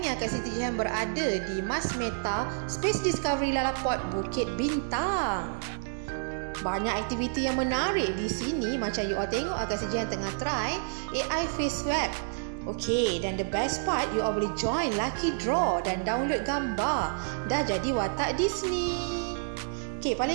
ni Kak Siti Jihan berada di Mas Meta Space Discovery Lalaport Bukit Bintang. Banyak aktiviti yang menarik di sini. Macam you all tengok Kak Siti Jihan tengah try AI face swab. Okey, dan the best part, you all boleh join lucky draw dan download gambar. Dah jadi watak Disney. Okey,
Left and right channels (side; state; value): left; silent; digital silence